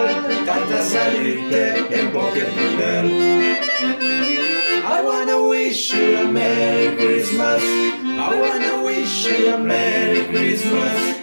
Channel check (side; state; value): both; inverted; correlation -1.00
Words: tanta salute e poche boneur. I wanna wish you a Merry Christmas. I wanna wish you a Merry Christmas.